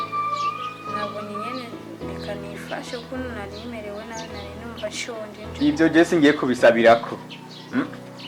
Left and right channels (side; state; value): both; identical; correlation 1.00